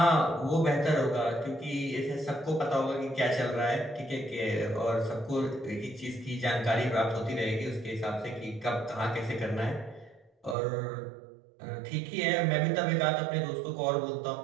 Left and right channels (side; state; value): left; drops out; at 10.6 s